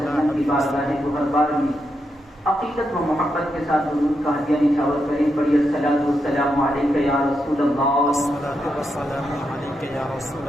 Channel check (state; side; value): normal; both; correlation 0.84